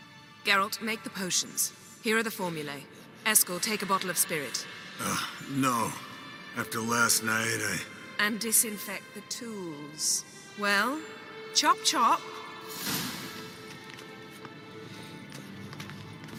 Geralt, make the potions. Here are the formulae. Eskel, take a bottle of spirit. No. After last night, And disinfect the tools. Well, chop chop.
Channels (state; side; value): identical; both; correlation 1.00